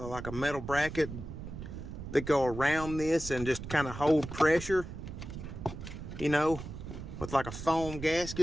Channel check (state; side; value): noise; right; rumble, 9 dB below the sound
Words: like a metal bracket that go around this and just kind of hold pressure, you know, with like a foam